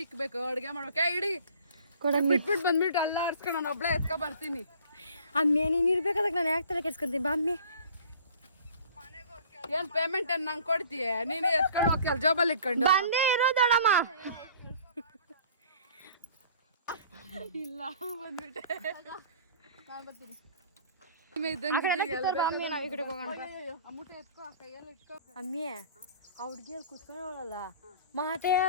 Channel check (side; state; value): both; inverted; correlation -0.49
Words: ಇಕ್ಬೇಕು, ಅಡುಗೆ ಮಾಡ್ಬೇಕು. ಇಡಿ ಕೊಡಮ್ಮಿ. ಬಿಟ್ಬಿಟ್ಟು ಬಂದ್ಬಿಟ್ಟು ಅಲ್ಲ ಆಡ್ಸ್ಕೊಂಡು ನಾನು ಒಬ್ಳೆ ಎತ್ಕೊ ಬರ್ತೀನಿ. ಅಮ್ಮಿ ನೀನು ಇರ್ಬೇಕಾದಾಗ ನಾನು ಯಾಕೆ ತಲೆ ಕೆಡ್ಸ್ಕೊಂತೀನಿ. ಬಾ ಅಮ್ಮಿ. ಏನು ಪೇಮೆಂಟ್ ಏನು ನಂಗೆ ಕೊಡ್ತೀಯ? ನೀನು ಎತ್ಕೊಂಡು ಹೋಗಿ ಜಾಬಲ್ಲಿ ಇಟ್ಕೊಂಡು ಬಂದೇ ಇರೋದಮ್ಮ. ಇಲ್ಲ ಬಂದ್ಬಿಟ್ಟೆ. ಅಮ್ಮಿ ನಾವು ಈ ಕಡೆ ಹೋಗೋಣ. ಅಮ್ಮೂಟ ಎತ್ಕೋ, ಆ ಕೈಯಲ್ಲಿ ಇಟ್ಕೋ. ಅಮ್ಮಿ ಆ ಹುಡುಗಿಯಲ್ಲಿ ಕುತ್ಕೊಳ್ಳೋಳಲ್ಲ ಮಾತೇ